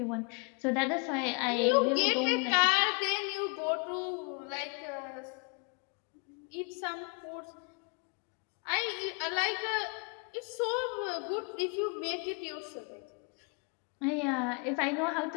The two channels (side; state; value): right; quieter; 36.7 dB